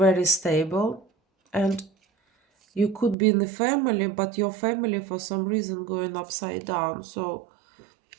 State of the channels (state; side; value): drops out; left; at 3.2 s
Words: stable, and you could be in the family, but your family for some reason going upside down. So